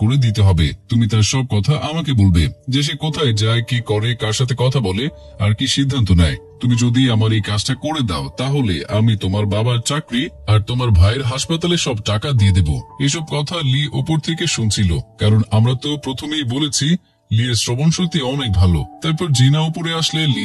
করে দিতে হবে। তুমি তার সব কথা আমাকে বলবে, যে সে কোথায় যায়, কি করে, কার সাথে কথা বলে আর কি সিদ্ধান্ত নেয়। তুমি যদি আমার এই কাজটা করে দাও তাহলে আমি তোমার বাবার চাকরি আর তোমার ভাইয়ের হাসপাতালে সব টাকা দিয়ে দেব। এসব কথা লি ওপর থেকে শুনছিল, কারণ আমরা তো প্রথমেই বলেছি লিয়ের শ্রবণ শক্তি অনেক ভালো। তারপর জিনা উপরে আসলে লি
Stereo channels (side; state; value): both; identical; correlation 1.00